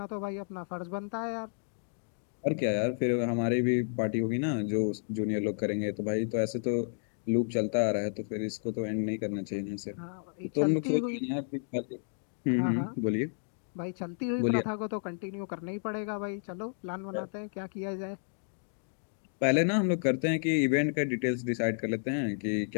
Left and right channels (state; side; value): silent; right; digital silence